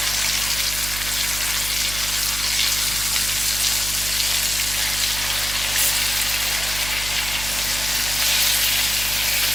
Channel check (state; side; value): noise; right; hum, 8 dB below the sound